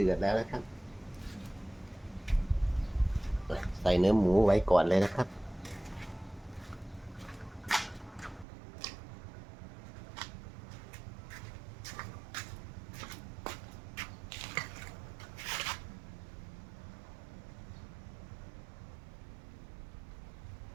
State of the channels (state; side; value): drops out; left; at 8.5 s